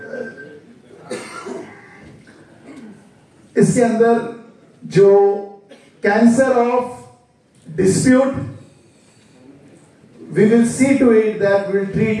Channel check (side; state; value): both; identical; correlation 1.00